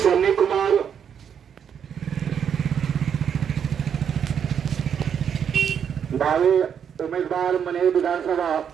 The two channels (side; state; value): left; quieter; 8.0 dB